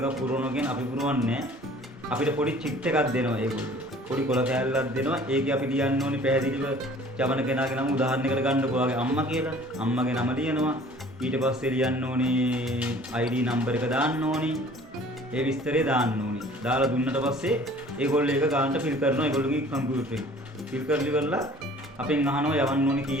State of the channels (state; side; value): normal; both; correlation 0.50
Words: පුරවනවා කියන්නේ අපි පුරවන්නේ අපිට පොඩි චිට් එකක් දෙනවා ඒගොල්ලෝ. පොඩි කොළ කෑල්ලක් දෙනවා. ඒකේ අපි ලියන්න ඕනි පැහැදිලිව යවන කෙනාගේ නම උදාහරණයකට ගන්නකො ඔයාගේ අම්මා කියලා. අම්මගේ නම ලියනවා. ඊට පස්සේ ලියන්න ඕනි ID නම්බර් එක දාන්න ඕනි. ඒ විස්තරේ දාන්න ඕනි. දාලා දුන්නට පස්සේ ඒගොල්ලෝ ඒක ගානට ෆිල් කරනවා ඒගොල්ලෝගේ කම්පියුටරේ. ෆිල් කරලි කරලා අපෙන් අහනවා යවන්න ඕනි